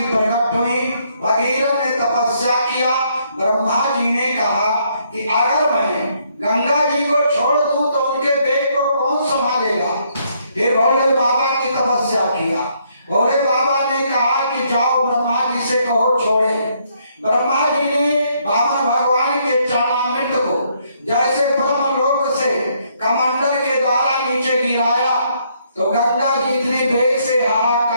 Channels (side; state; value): both; inverted; correlation -0.71